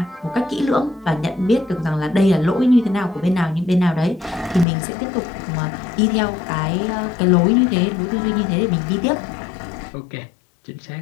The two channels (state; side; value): drops out; right; at 4.7 s